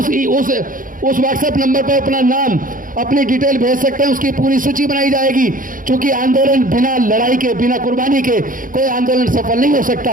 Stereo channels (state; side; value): late; left; 0.40 ms